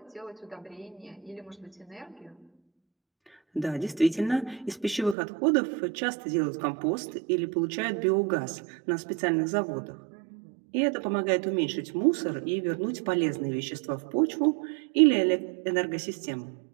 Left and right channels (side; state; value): left; drops out; at 5.2 s